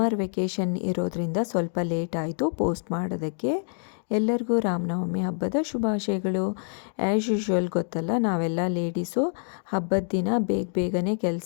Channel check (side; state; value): right; silent; 61 dB below the other